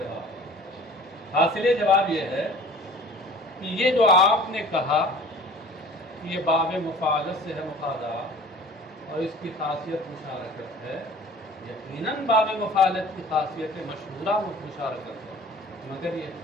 حاصل جواب یہ ہے کہ یہ جو آپ نے کہا کہ یہ باب مفاعلت سے ہے مخادعہ، اور اس کی خاصیت مشارکت ہے، یقیناً باب مفاعلت کی خاصیت مشہورہ مشارکت ہے، مگر یہ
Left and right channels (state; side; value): normal; both; correlation 0.45